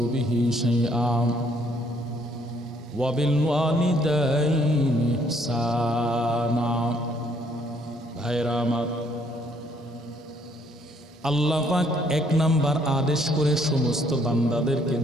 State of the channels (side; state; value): both; normal; correlation 0.66